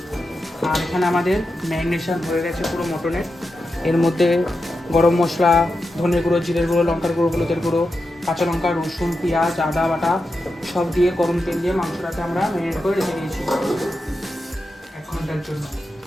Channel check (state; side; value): normal; both; correlation 0.89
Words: আর এখানে আমাদের ম্যারিনেশন হয়ে গেছে পুরো মটনের। এর মধ্যে গরম মশলা, ধনে গুঁড়ো, জিরের গুঁড়ো, লঙ্কার গুঁড়ো, হলুদের গুঁড়ো, কাঁচা লঙ্কা, রসুন, পেঁয়াজ, আদা বাটা সব দিয়ে গরম তেল দিয়ে মাংসটাকে আমরা ম্যারিনেট করে রেখে দিয়েছি 1 ঘন্টার জন্য।